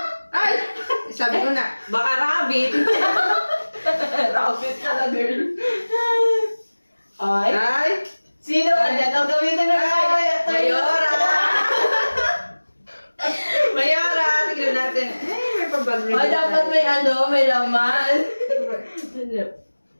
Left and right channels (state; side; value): inverted; both; correlation -1.00